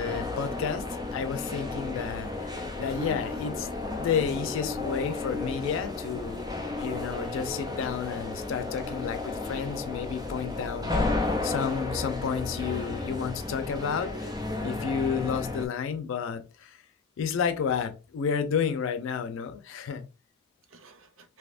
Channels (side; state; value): right; quieter; 4.8 dB